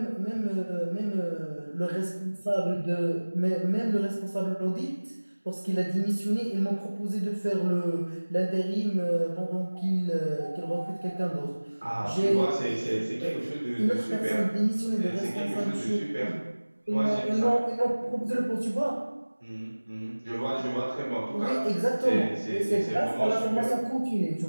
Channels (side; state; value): both; inverted; correlation -1.00